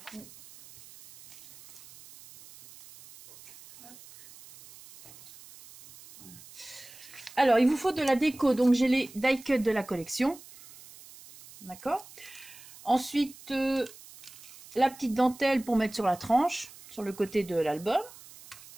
Alors, il vous faut de la déco. Donc, j'ai les die cut de la collection. D'accord. Ensuite, la petite dentelle pour mettre sur la tranche, sur le côté de l'album.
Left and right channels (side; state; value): right; noise; hiss, 20 dB below the sound